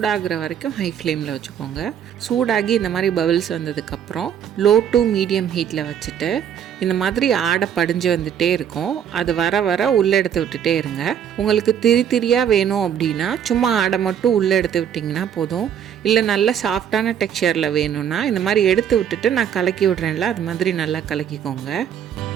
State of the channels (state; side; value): quieter; left; 8.9 dB